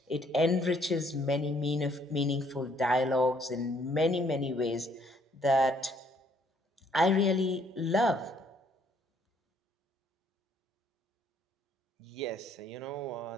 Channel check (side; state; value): both; normal; correlation 0.65